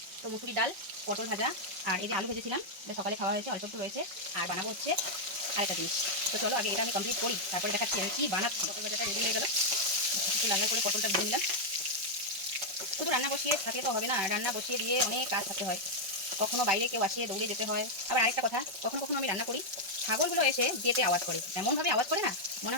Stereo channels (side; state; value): left; late; 5.5 ms